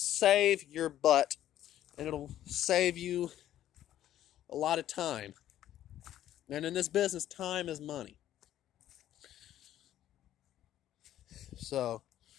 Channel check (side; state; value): right; quieter; 12.2 dB